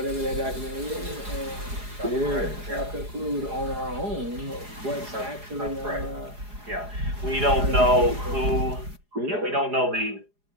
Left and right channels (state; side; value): late; left; 4.8 ms